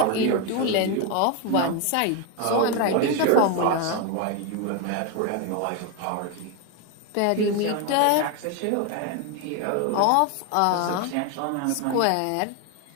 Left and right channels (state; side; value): different; both; correlation 0.01